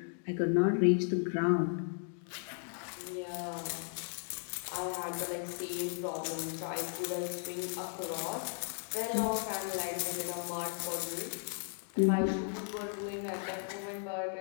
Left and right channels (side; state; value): right; silent; 54 dB below the other